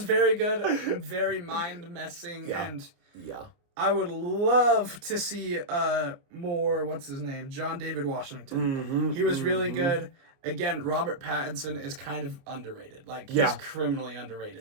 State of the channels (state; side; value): late; left; 29 ms